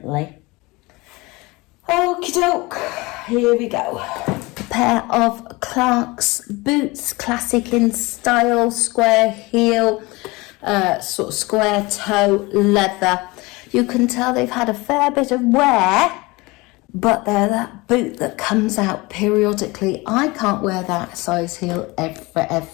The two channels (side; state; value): right; quieter; 23.5 dB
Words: Okie doke, here we go. A pair of Clark's boots, classic in style, square heel, sort of square toe leather. You can tell they've had a fair bit of wear, but they're that boot that comes out periodically. I can't wear that size heel